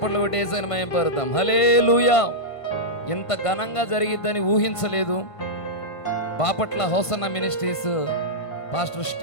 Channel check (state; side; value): late; right; 1.5 ms